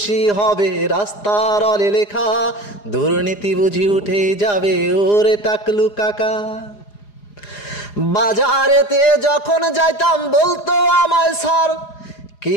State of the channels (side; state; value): right; late; 4.9 ms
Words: হবে রাস্তার অলে লেখা, দুর্নীতি বুঝি উঠে যাবে ওরে টাকলু কাকা। বাজারেতে যখন যাইতাম বলতো আমায় স্যার,